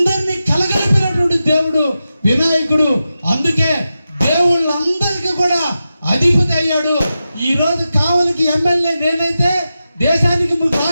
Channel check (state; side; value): inverted; both; correlation -0.91